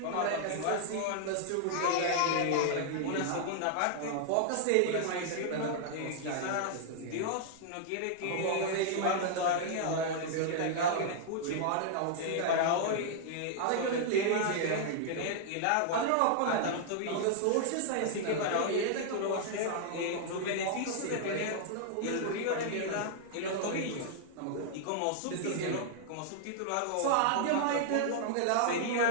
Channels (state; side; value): different; both; correlation -0.01